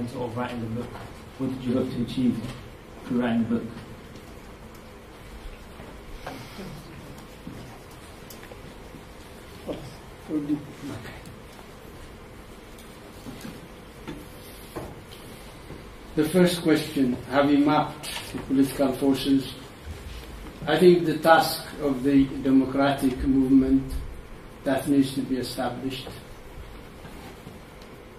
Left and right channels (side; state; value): both; identical; correlation 1.00